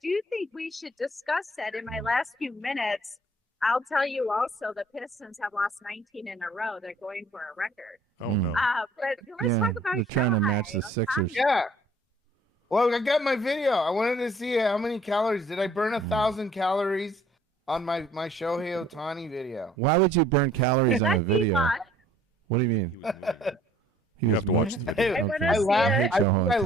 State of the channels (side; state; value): both; normal; correlation 0.57